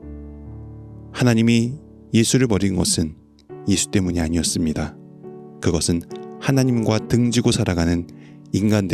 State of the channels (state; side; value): identical; both; correlation 1.00